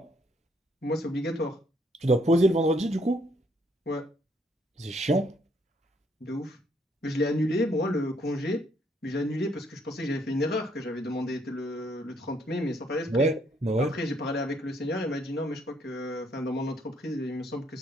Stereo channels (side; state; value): both; normal; correlation 0.69